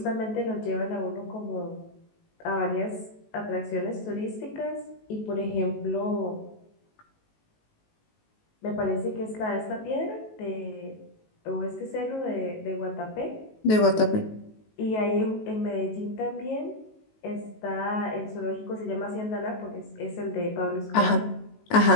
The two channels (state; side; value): late; right; 19 ms